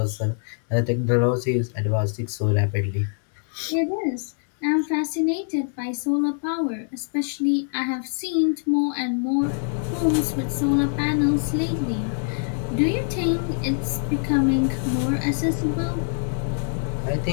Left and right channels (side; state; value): right; silent; digital silence